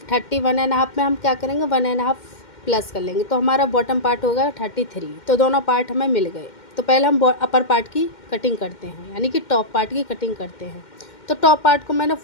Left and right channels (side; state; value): right; late; 2.1 ms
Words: 31.5 में हम क्या करेंगे, 1.5 प्लस कर लेंगे, तो हमारा बॉटम पार्ट होगा 33। तो दोनों पार्ट हमें मिल गए। तो पहले हम अपर पार्ट की कटिंग करते हैं, यानी कि टॉप पार्ट की कटिंग करते हैं। तो टॉप पार्ट को मैंने